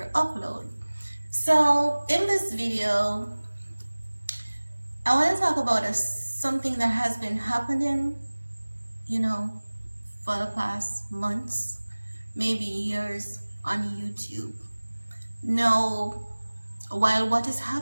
upload. So in this video, I want to talk about something that has been happening, for the past months, maybe years on YouTube. Now, while what is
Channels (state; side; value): inverted; both; correlation -1.00